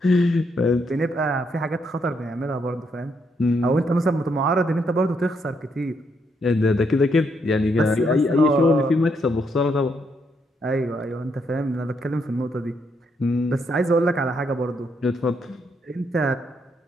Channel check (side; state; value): both; normal; correlation 0.76